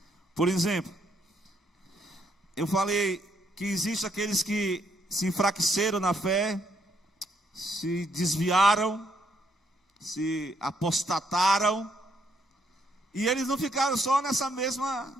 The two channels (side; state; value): both; normal; correlation 0.72